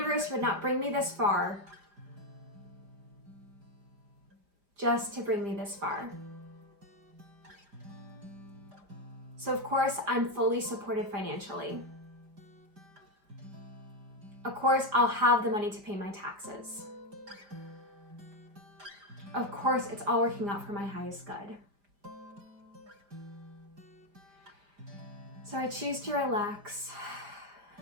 would not bring me this far just to bring me this far. So of course, I'm fully supported financially. Of course, I'll have the money to pay my taxes. Of course, it's all working out for my highest good. So I choose to relax.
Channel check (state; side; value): late; left; 5.0 ms